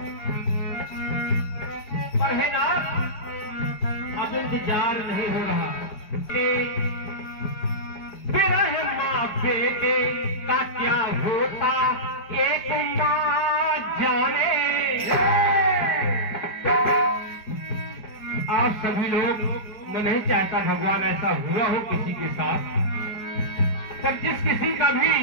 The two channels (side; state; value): right; late; 4.7 ms